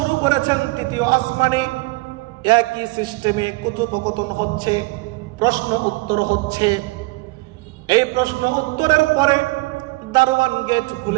করেছেন। তৃতীয় আসমানে একই সিস্টেমে কথোপকথন হচ্ছে, প্রশ্ন উত্তর হচ্ছে। এই প্রশ্ন উত্তরের পরে দারওয়ান গেট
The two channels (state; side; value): quieter; left; 24.6 dB